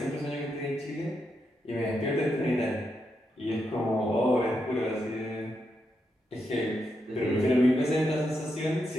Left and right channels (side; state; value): both; normal; correlation 0.83